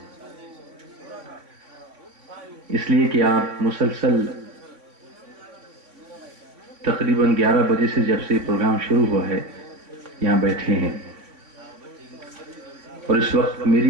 اس لیے کہ آپ مسلسل تقریباً 11 بجے سے جب سے پروگرام شروع ہوا ہے یہاں بیٹھے ہیں، اور اس وقت میری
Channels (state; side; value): late; left; 3.5 ms